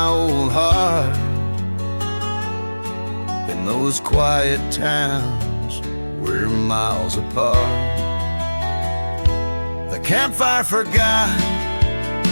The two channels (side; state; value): both; inverted; correlation -1.00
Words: old heart. In those quiet towns we're miles apart. The campfire forgot